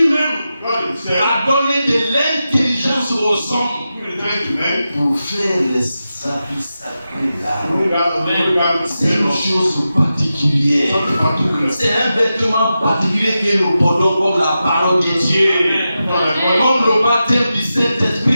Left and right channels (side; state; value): both; inverted; correlation -0.91